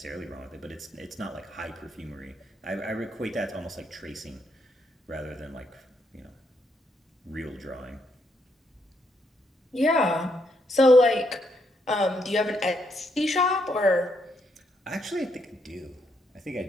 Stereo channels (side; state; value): both; normal; correlation 0.76